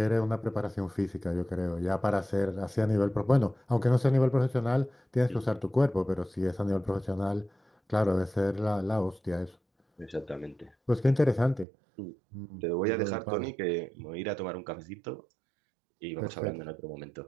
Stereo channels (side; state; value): left; drops out; at 11.7 s